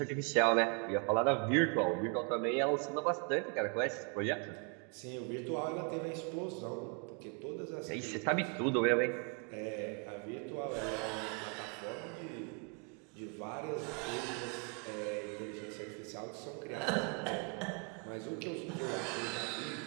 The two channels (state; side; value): quieter; left; 36.6 dB